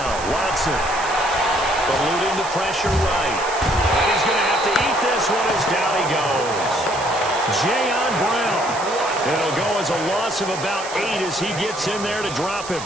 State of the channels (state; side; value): noise; right; hiss, 11 dB below the sound